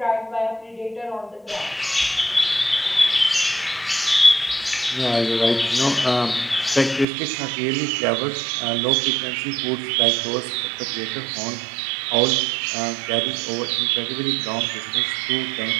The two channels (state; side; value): drops out; left; at 7.1 s